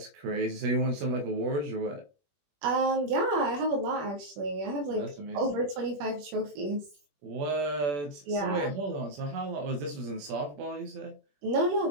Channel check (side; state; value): left; late; 21 ms